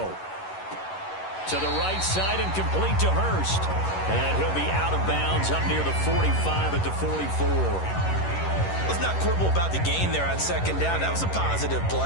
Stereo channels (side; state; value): right; late; 11 ms